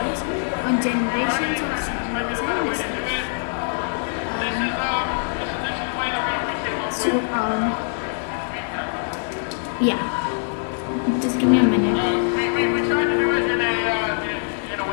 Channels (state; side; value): silent; right; 63 dB below the other